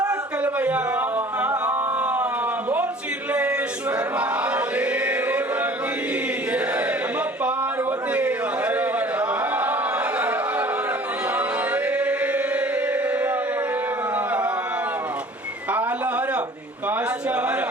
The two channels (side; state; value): both; normal; correlation 0.48